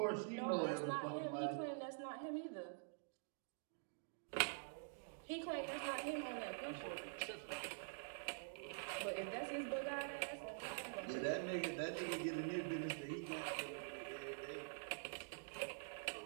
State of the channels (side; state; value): left; silent; digital silence